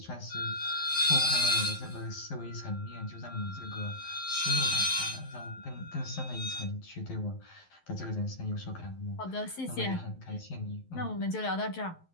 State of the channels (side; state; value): right; late; 11 ms